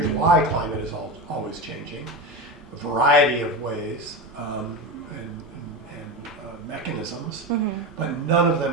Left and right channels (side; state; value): both; normal; correlation 0.21